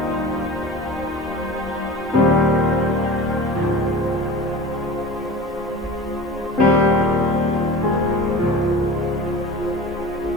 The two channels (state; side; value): normal; both; correlation 0.36